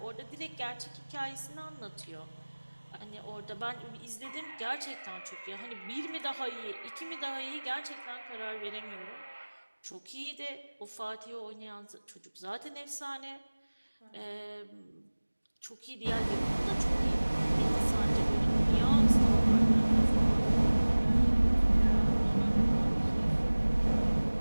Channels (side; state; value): both; inverted; correlation -1.00